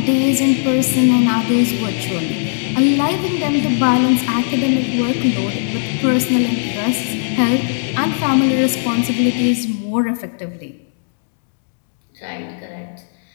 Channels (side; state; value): right; silent; digital silence